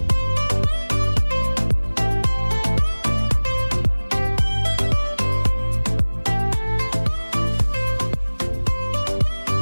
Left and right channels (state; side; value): inverted; both; correlation -1.00